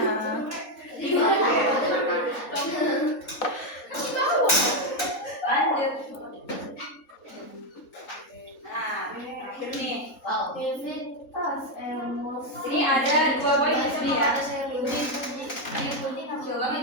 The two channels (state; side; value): late; right; 3.8 ms